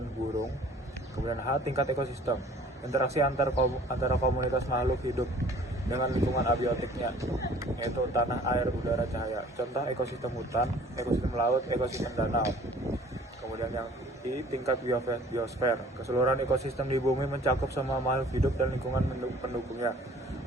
burung. Kemudian H. Tingkat ekosistem. Interaksi antara komunitas makhluk hidup dengan lingkungan abiotiknya, yaitu tanah, air, udara, cahaya. Contoh ekosistem hutan, ekosistem laut, ekosistem danau. Kemudian yang I. Tingkat biosfer. Keseluruhan ekosistem di bumi mencakup semua makhluk hidup dan lingkungan pendukungnya.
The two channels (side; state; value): both; normal; correlation 0.52